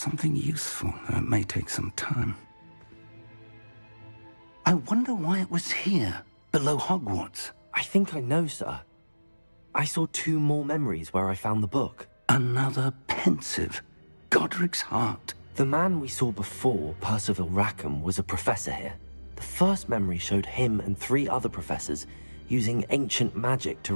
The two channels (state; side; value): inverted; both; correlation -1.00